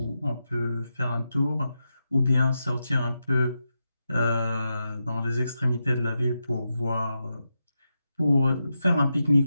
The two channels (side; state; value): both; inverted; correlation -0.88